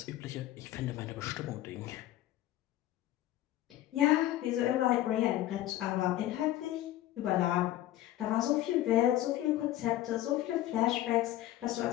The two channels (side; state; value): right; quieter; 14.2 dB